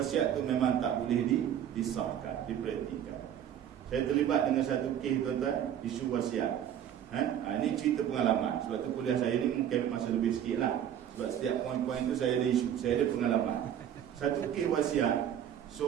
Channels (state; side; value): quieter; left; 9.9 dB